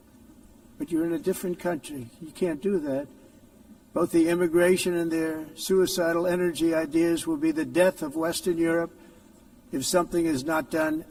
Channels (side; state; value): both; identical; correlation 1.00